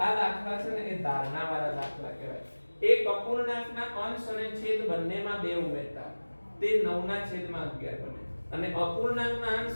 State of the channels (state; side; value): inverted; both; correlation -1.00